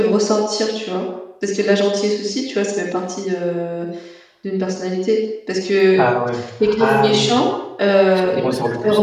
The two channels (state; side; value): identical; both; correlation 1.00